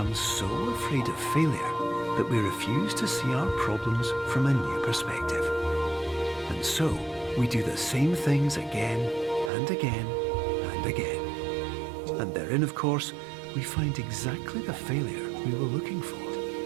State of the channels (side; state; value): left; drops out; at 9.5 s